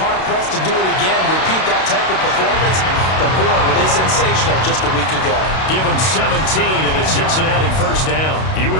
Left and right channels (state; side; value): late; right; 32 ms